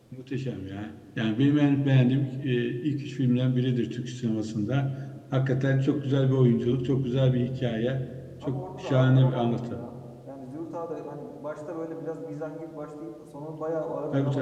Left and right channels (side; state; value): both; identical; correlation 1.00